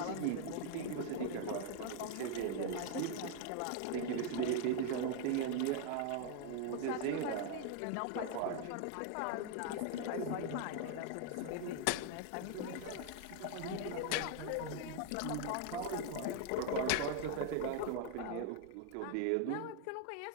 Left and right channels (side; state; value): both; different; correlation 0.00